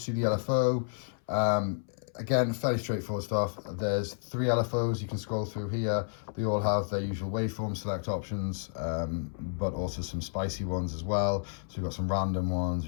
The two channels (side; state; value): right; silent; 57 dB below the other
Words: the LFO. Again, fairly straightforward stuff. There's 3 LFOs you can scroll through here. They all have their usual waveform select options, but also some spicy ones as well. So we've got some random ones,